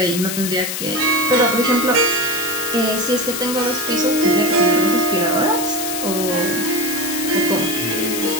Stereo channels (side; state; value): left; noise; hiss, 4 dB below the sound